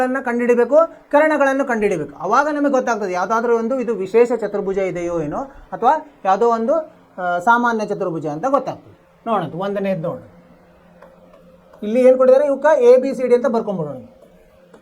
ಕಂಡುಹಿಡಬೇಕು, ಕರ್ಣಗಳನ್ನು ಕಂಡುಹಿಡಬೇಕು. ಆವಾಗ ನಮಗೆ ಗೊತ್ತಾಗ್ತದೆ ಯಾವುದಾದ್ರೂ ಒಂದು ಇದು ವಿಶೇಷ ಚತುರ್ಭುಜ ಇದೆಯೋ ಏನೋ, ಅಥವಾ ಯಾವುದೋ ಒಂದು ಸಾಮಾನ್ಯ ಚತುರ್ಭುಜ ಅಂತ ಗೊತ್ತಾಗ್ತದೆ. ನೋಡೋಣ, 1ನೇದು ನೋಡೋಣ. ಇಲ್ಲಿ ಏನು ಕೊಟ್ಟಿದ್ದಾರೆ? ಇವಕ್ಕೆ ABCD ಅಂತ ಬರ್ಕೊಂಡ್ಬಿಡೋಣ.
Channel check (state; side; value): identical; both; correlation 1.00